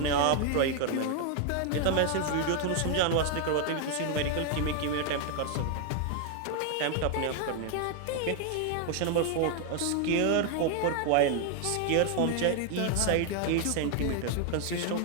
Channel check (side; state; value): both; different; correlation 0.00